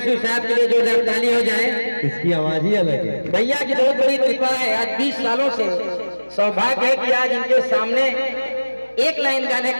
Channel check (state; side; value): inverted; both; correlation -1.00